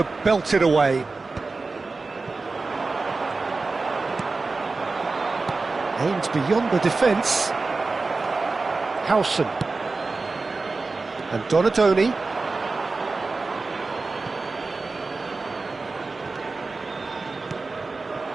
belt it away. Aims beyond the defence. Howson. And Donatoni.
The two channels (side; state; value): left; quieter; 3.8 dB